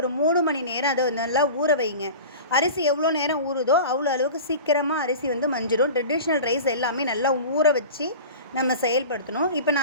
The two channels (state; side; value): inverted; both; correlation -0.35